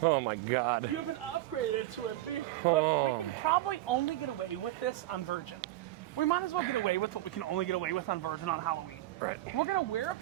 Oh my God. You have been upgraded to a big... Look, we can probably only get away with this on Virgin. We might as well get away with what we can only get away with on Virgin on Halloween. Right. We're gonna wear a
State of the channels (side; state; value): left; quieter; 15.8 dB